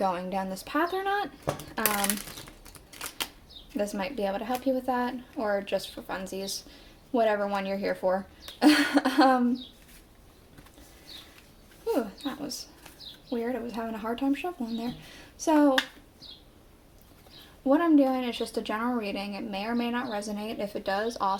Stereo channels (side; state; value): both; identical; correlation 1.00